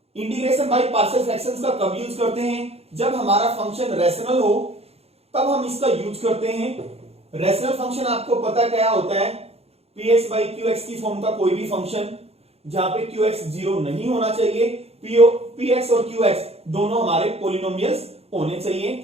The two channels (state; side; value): late; left; 0.29 ms